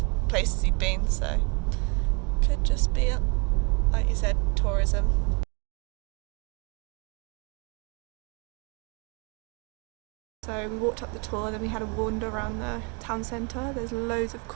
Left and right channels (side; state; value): left; quieter; 31.9 dB